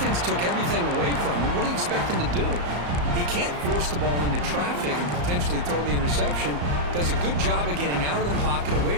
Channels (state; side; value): late; left; 34 ms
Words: took everything away from him. What do you expect him to do? He can't force the ball into traffic and potentially throw the interception. Does a good job of getting out of the pocket,